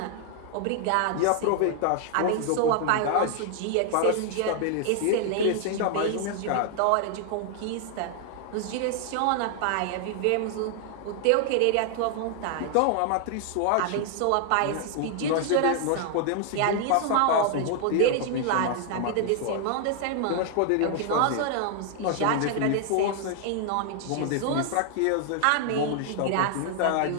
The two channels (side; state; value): both; different; correlation 0.00